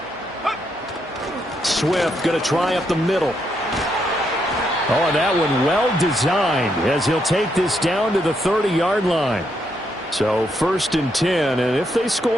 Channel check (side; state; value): both; normal; correlation 0.78